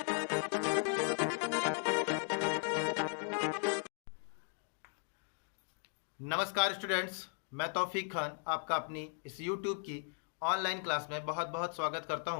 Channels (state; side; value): silent; right; 53 dB below the other